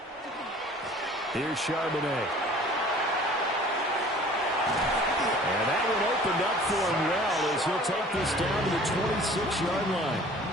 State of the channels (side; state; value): both; normal; correlation 0.48